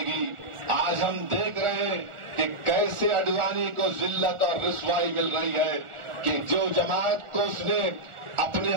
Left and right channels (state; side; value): late; left; 1.4 ms